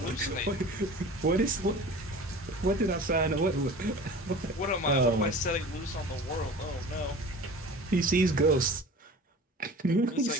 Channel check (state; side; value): normal; both; correlation 0.39